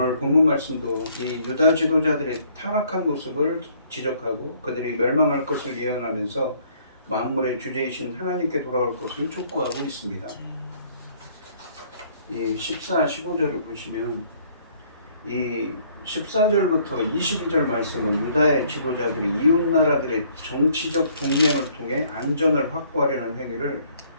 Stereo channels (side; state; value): both; inverted; correlation -0.62